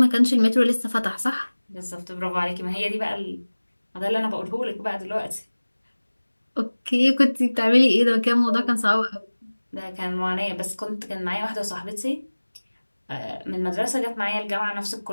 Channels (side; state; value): both; inverted; correlation -1.00